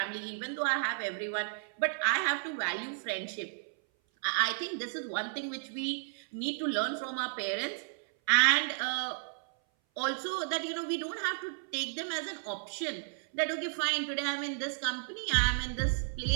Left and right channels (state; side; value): silent; left; 56 dB below the other